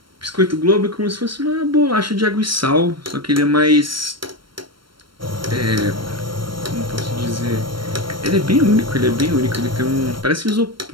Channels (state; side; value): late; left; 0.73 ms